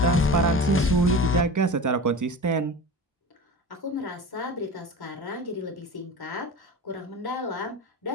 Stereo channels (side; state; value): both; normal; correlation 0.32